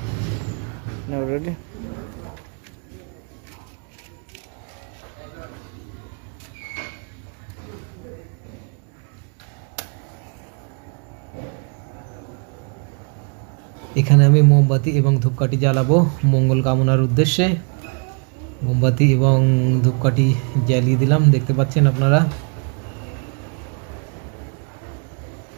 Now ready? এখানে আমি মোমবাতি এবং ধূপকাঠি জ্বালাবো মঙ্গল কামনার উদ্দেশ্যে। মোমবাতি এবং ধূপকাঠি জ্বালিয়ে দিলাম, দেখতে পাচ্ছেন আপনারা।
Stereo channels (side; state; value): left; quieter; 39.1 dB